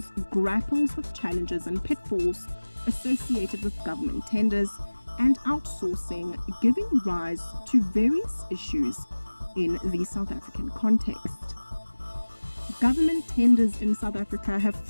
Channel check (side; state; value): both; inverted; correlation -1.00